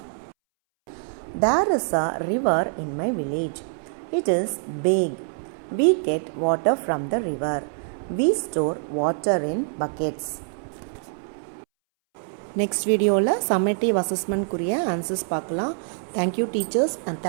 There is a river in my village. It is big. We get water from the river. We store water in buckets. Next வீடியோவில் summative அசஸ்மெண்ட்க்குரிய answers பார்க்கலாம். Thank you teachers and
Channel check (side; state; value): left; silent; 62 dB below the other